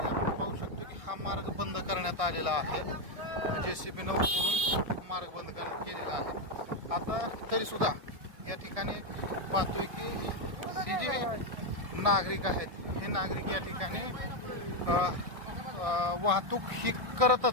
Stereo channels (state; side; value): late; left; 1.6 ms